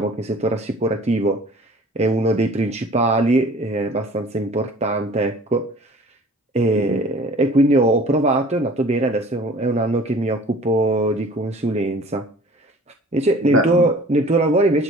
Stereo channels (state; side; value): normal; both; correlation 0.48